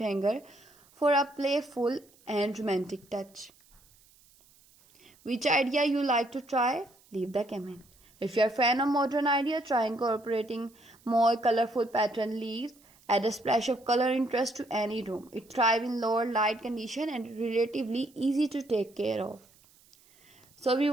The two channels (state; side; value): noise; right; hiss, 29 dB below the sound